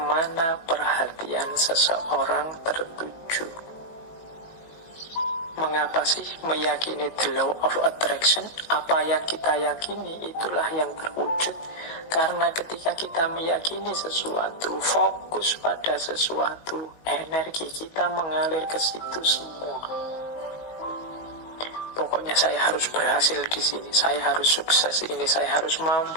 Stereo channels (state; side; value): late; right; 19 ms